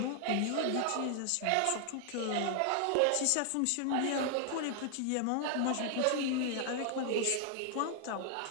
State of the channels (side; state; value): both; different; correlation 0.00